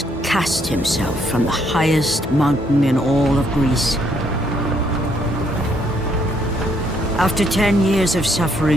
cast himself from the highest mountain in all of Greece. After 10 years of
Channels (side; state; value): both; normal; correlation 0.71